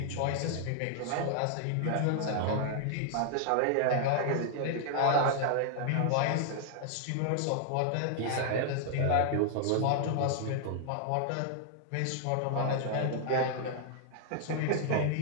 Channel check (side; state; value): both; different; correlation 0.00